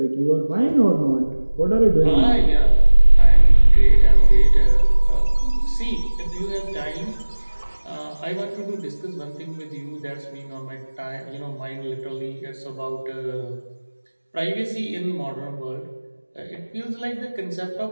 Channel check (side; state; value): both; inverted; correlation -1.00